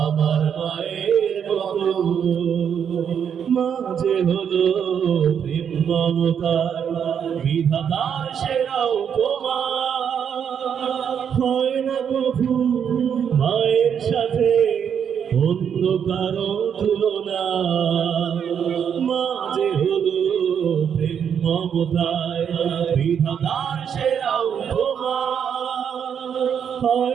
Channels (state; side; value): quieter; left; 7.9 dB